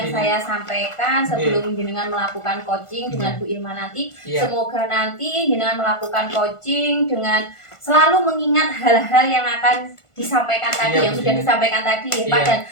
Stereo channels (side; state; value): right; late; 1.5 ms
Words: saya sampaikan sebelum jenengan melakukan coaching dengan Bu Ilma nanti. Semoga nanti jenengan melakukan coaching dengan selalu mengingat hal-hal yang akan disampaikan tadi, yang sudah disampaikan tadi ya Pak, dan